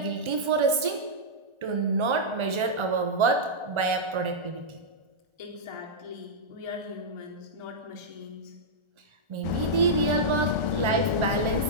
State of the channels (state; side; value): late; left; 1.3 ms